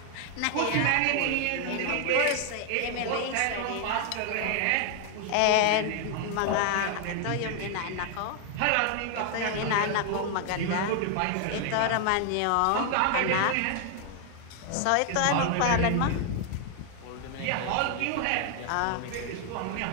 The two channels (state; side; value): different; both; correlation 0.00